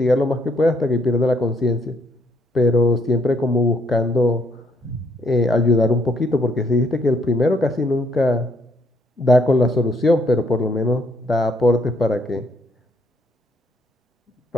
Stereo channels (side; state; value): both; normal; correlation 0.70